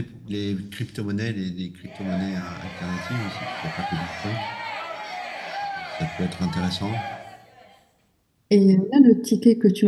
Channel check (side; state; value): both; identical; correlation 1.00